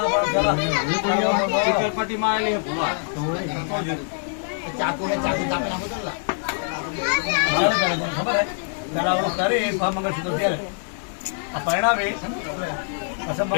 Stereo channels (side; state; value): right; silent; digital silence